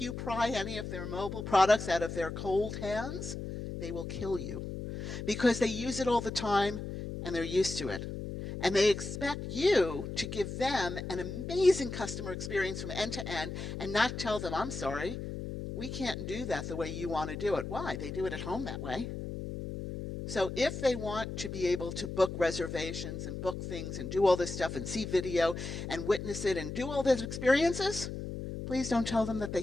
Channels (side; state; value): left; noise; hum, 6 dB below the sound